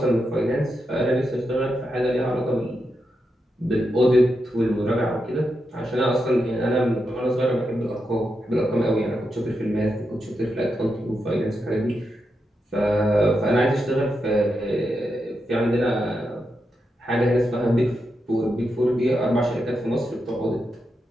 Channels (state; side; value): normal; both; correlation 0.86